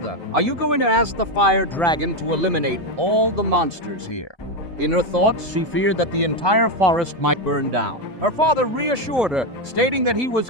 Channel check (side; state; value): both; normal; correlation 0.09